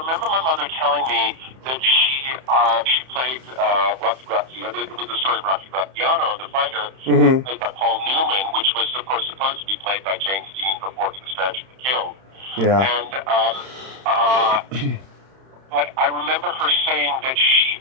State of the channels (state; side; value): late; left; 31 ms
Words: my mother telling me that she played Rocky Graziano. It was the story of Rocky Graziano, the fighter, Mm-hmm. played by Paul Newman, which was, of course, supposed to be played by James Dean before he was tragically killed. Yeah. And but I remember her saying that she